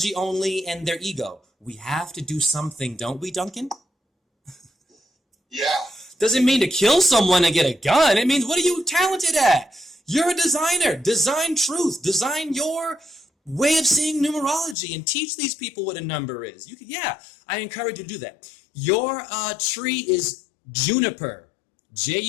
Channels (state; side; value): drops out; right; at 14.8 s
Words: only and their ego. We have to do something, don't we, Duncan? Yeah. Doesn't mean to kill someone and get a gun. It means, what are you talented at? You're a designer. Design truth. Design your way of seeing numerology and teach these people what a number is. You can, yeah, I encourage you to do that. Your tree is juniper.